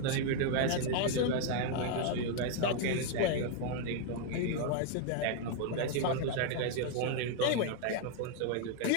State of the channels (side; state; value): both; different; correlation 0.00